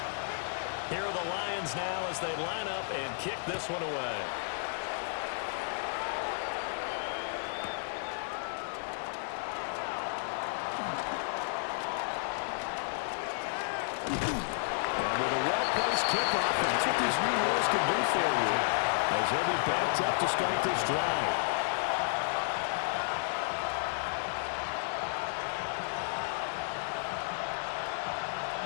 Here are the Lions now as they line up and kick this one away. And with a well-placed kickoff, that's what these new rules can do for you, as he'll be backed up to start this drive.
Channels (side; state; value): right; silent; digital silence